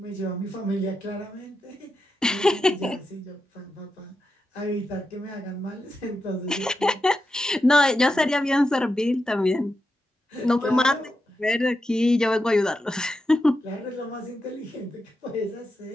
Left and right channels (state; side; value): normal; both; correlation 0.88